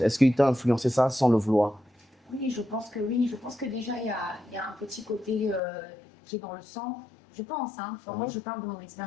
qu'il t'a influencé ça sans le vouloir? Oui, je pense que oui. Je pense que déjà, il y a un petit côté qui est dans le sang. Je pense, hein. Enfin, moi je parle de mon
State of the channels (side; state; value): right; drops out; at 5.6 s